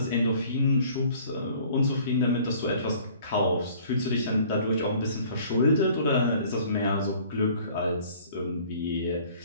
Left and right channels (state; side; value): inverted; both; correlation -0.53